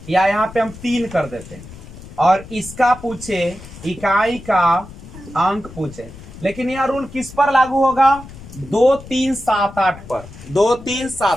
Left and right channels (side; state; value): left; noise; rumble, 16 dB below the sound